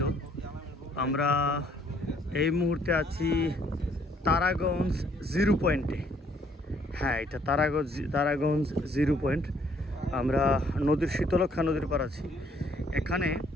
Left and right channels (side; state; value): both; normal; correlation 0.64